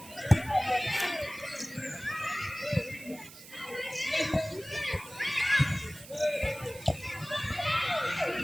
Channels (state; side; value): noise; right; hiss, 17 dB below the sound